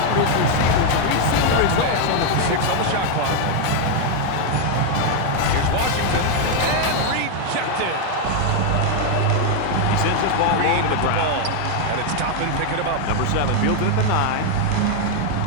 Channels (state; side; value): different; both; correlation 0.01